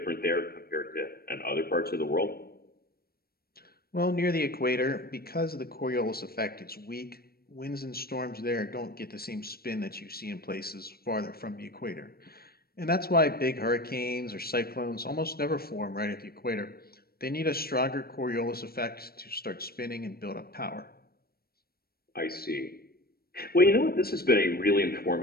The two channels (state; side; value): late; right; 0.44 ms